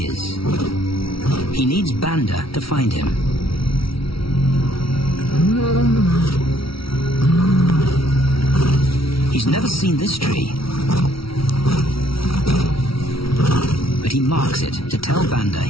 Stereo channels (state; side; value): late; right; 0.75 ms